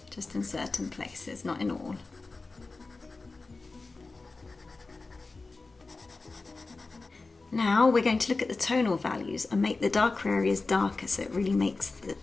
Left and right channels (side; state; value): right; quieter; 3.7 dB